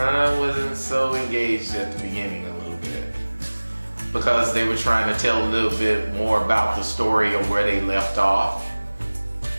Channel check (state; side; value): inverted; both; correlation -1.00